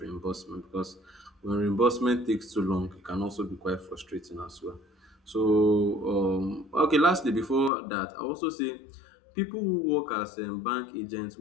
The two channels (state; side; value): drops out; right; at 7.7 s